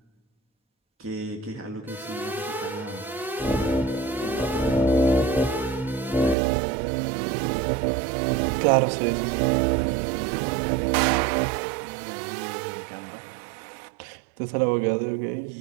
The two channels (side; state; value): left; drops out; at 6.4 s